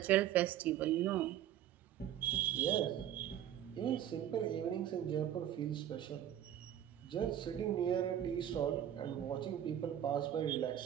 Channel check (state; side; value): quieter; left; 10.9 dB